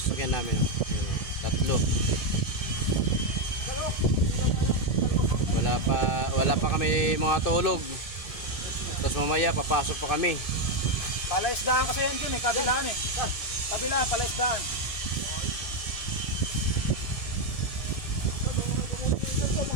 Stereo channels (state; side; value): late; right; 1.7 ms